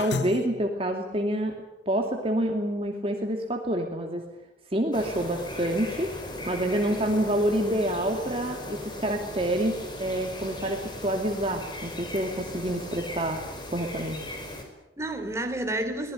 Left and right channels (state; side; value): normal; both; correlation 0.54